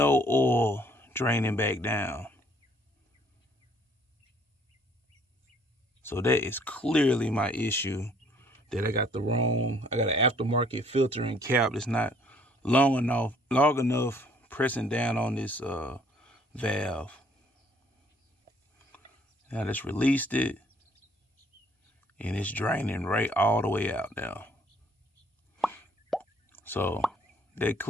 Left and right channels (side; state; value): both; normal; correlation 0.61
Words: oil draining back down. So that is clearly my issue, that I got an aftermarket filter and cap that's not long enough pressing down on this valve. Now I just released it, and it's draining right all the way out now. So that